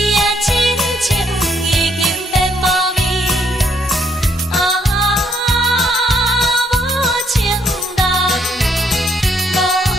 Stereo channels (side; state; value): both; normal; correlation 0.71